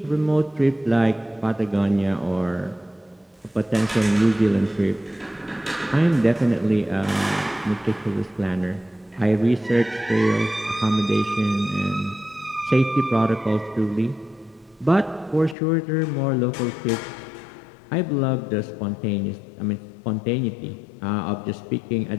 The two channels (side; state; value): right; drops out; at 15.6 s